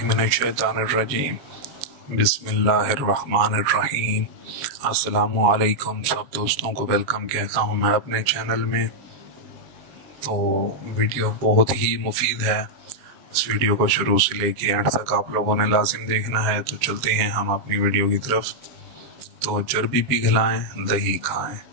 मिनश्शैतानिर्रजीम बिस्मिल्लाहिर्रहमानिर्रहीम। अस्सलामु अलैकुम सब दोस्तों को वेलकम कहता हूँ मैं अपने चैनल में। तो वीडियो बहुत ही मुफीद है, इस वीडियो को शुरू से लेके एंड तक आप लोगों ने लाजिम देखना है। तो चलते हैं हम अपनी वीडियो की तरफ। तो चर्बी पिघलाएं, दही खाएं।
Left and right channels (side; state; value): left; late; 7.2 ms